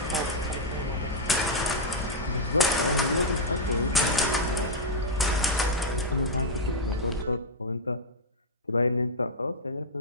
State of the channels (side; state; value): both; normal; correlation -0.05